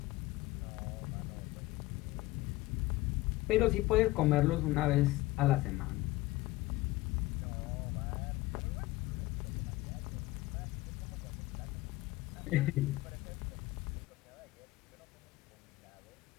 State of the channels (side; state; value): right; quieter; 18.5 dB